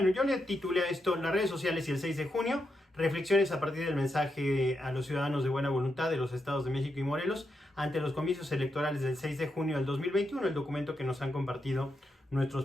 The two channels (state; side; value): normal; both; correlation 0.84